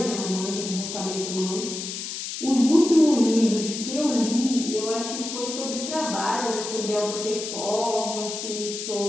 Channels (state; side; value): noise; left; hiss, 6 dB below the sound